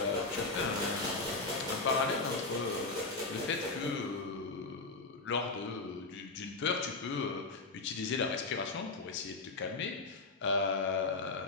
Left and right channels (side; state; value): right; quieter; 3.6 dB